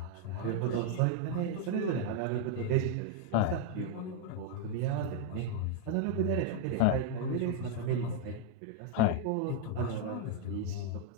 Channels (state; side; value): different; both; correlation 0.00